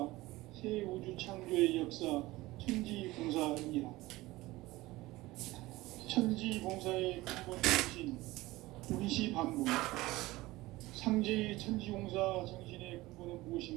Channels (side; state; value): left; quieter; 19.1 dB